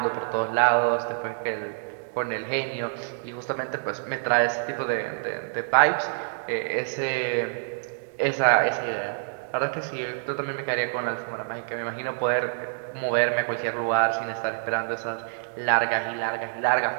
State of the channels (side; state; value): left; silent; digital silence